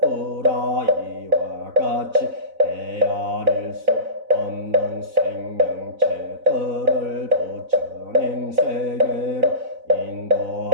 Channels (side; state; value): left; late; 4.0 ms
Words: 이와 같이 헤아릴 수 없는 생명체들을 부처님 세계로